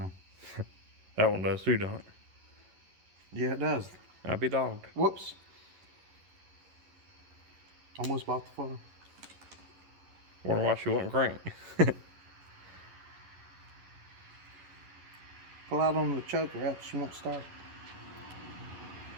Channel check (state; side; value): late; left; 11 ms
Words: That one does too, don't it? Yeah, it does. I'd be dogged. Whoops. Almost bought the phone. Wonder why she wouldn't crank. Pull out on the choker, else she won't start.